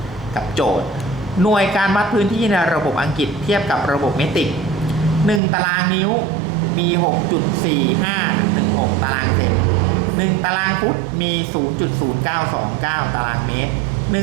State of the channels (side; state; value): left; drops out; at 5.4 s